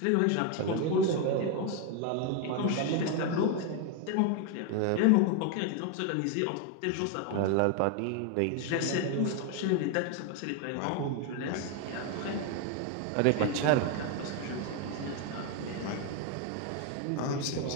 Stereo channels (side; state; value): both; different; correlation 0.01